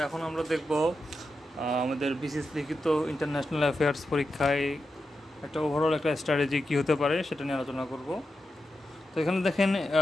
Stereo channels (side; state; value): both; normal; correlation 0.89